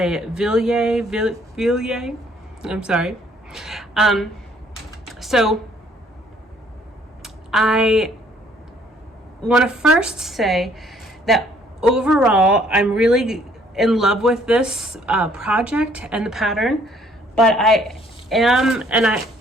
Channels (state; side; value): normal; both; correlation 0.62